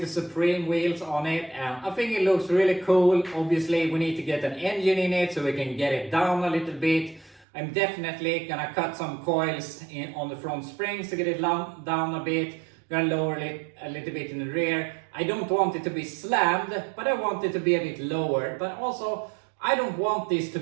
the Supreme wheels on it, and I think it looks really cool. Obviously we need to get an engine in it so we can get it down a little bit. I'm definitely gonna cut some coils on the front springs to get it down a bit. Gonna lower it a little bit in the rear. I don't want it to be slammed, but I want it to be a bit lower. But also, I don't want this to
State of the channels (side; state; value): left; drops out; at 7.5 s